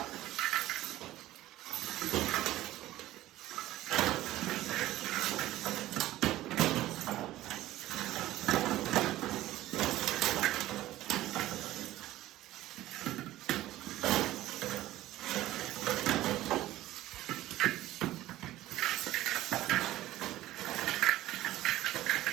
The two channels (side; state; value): left; quieter; 15.4 dB